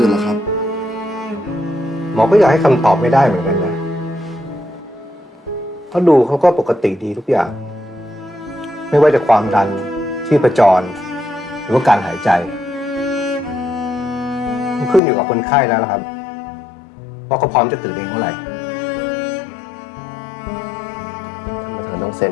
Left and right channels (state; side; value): drops out; right; at 15.0 s